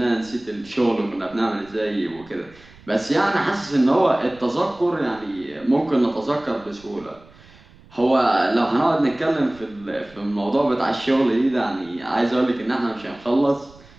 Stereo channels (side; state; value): right; noise; rumble, 24 dB below the sound